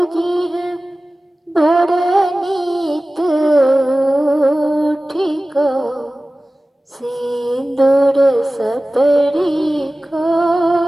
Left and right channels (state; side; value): normal; both; correlation 0.97